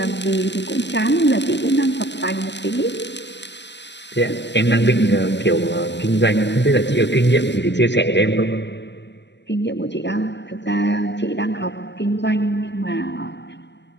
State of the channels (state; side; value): late; right; 0.51 ms